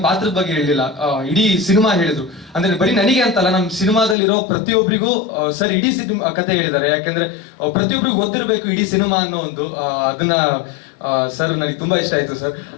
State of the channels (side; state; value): right; drops out; at 4.2 s